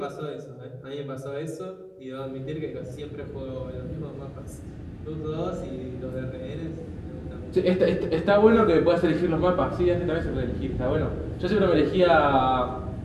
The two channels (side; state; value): both; identical; correlation 1.00